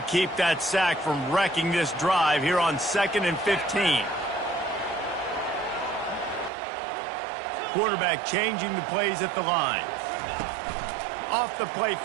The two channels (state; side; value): drops out; left; at 6.5 s